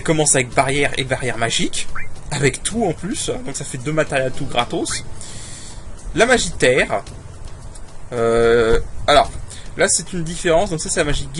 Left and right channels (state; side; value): identical; both; correlation 1.00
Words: commence avec barrière et barrière magique. avec tout en plus, donc ça fait 2 matériels tout gratos. La magie terre. Alors, là c'est une différence, donc ça c'est la magie